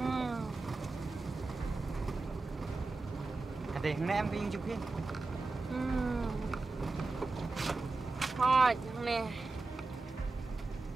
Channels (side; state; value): left; quieter; 3.6 dB